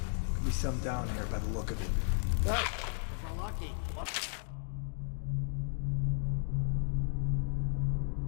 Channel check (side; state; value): right; silent; digital silence